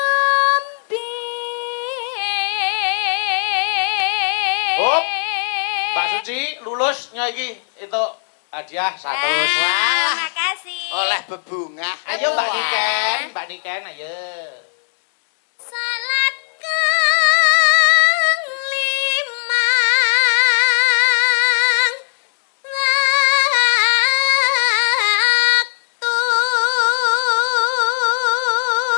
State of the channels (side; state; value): right; silent; 67 dB below the other